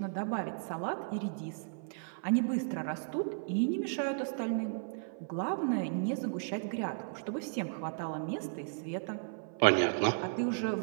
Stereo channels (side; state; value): left; silent; 55 dB below the other